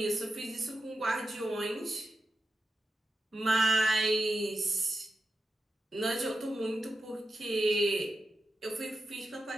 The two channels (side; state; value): both; normal; correlation 0.89